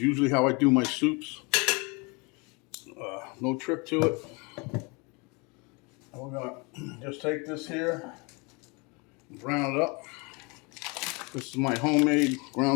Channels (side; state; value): right; quieter; 29.5 dB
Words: how I do my soups. No trick to it. And we're going to just take this here, brown it up. This is my homemade